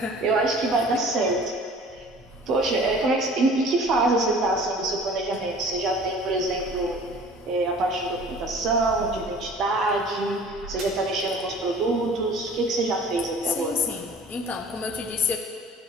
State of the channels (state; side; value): normal; both; correlation 0.47